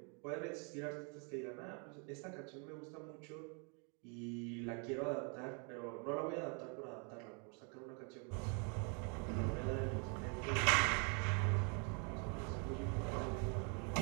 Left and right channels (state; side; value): quieter; left; 36.9 dB